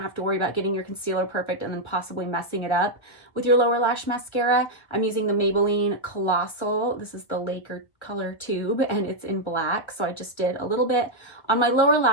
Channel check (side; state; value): right; late; 1.3 ms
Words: have to worry about getting your concealer perfect and then possibly messing it up with your lower lash mascara. I'm using the Maybelline Collossal. This is the Laker color tube, and it's in black, so I just did a little bit on my lower